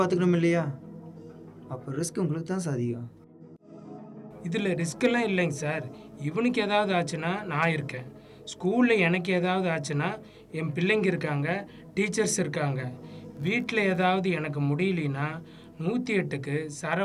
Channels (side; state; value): both; identical; correlation 1.00